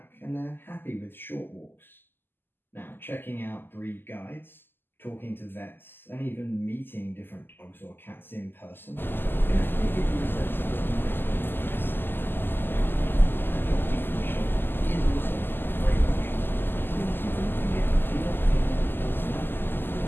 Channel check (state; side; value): late; right; 0.096 ms